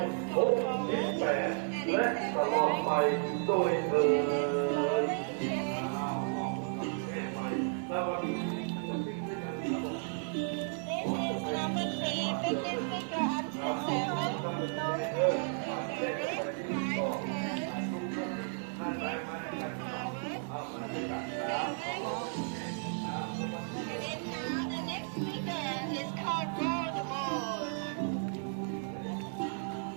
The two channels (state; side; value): silent; left; 55 dB below the other